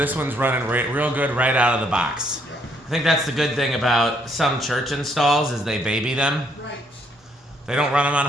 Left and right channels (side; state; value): both; normal; correlation 0.70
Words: one's running real good right out of the box. I think that's the good thing about some church installs is they baby them. Right. They don't run them on